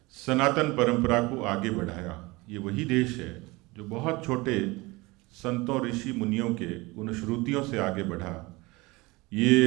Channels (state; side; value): quieter; left; 23.0 dB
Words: सनातन परंपरा को आगे बढ़ाया। ये वही देश है जो बहुत छोटे संतों, ऋषि मुनियों के उन श्रुतियों से आगे बढ़ा।